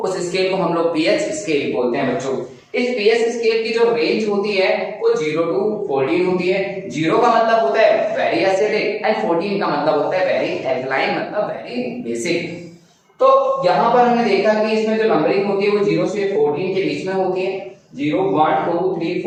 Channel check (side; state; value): both; identical; correlation 1.00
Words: उस स्केल को हम लोग पीएच स्केल बोलते हैं बच्चों। इस पीएच स्केल की जो रेंज होती है वो 0 to 14 होती है। 0 का मतलब होता है वेरी एसिडिक एंड 14 का मतलब होता है वेरी एल्कलाइन, मतलब वेरी बेसिक। तो यहाँ पर हमने देखा कि इसमें जो नंबरिंग होती है वो 0 से 14 के बीच में होती है। 0 1 2 3